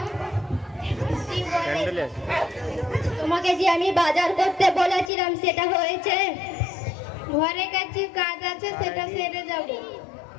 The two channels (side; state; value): right; drops out; at 5.1 s